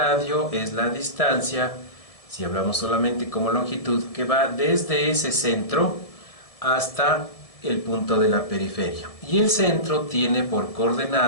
es la distancia, si hablamos solamente como longitud, que va desde ese centro hasta el punto de la periferia. Y el centro tiene por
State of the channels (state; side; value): late; right; 1.7 ms